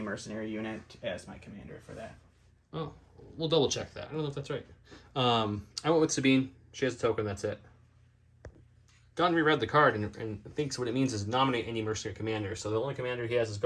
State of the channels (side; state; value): both; identical; correlation 1.00